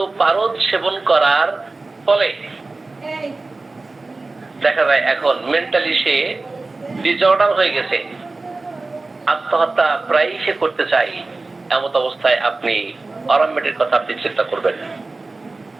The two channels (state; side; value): quieter; left; 3.4 dB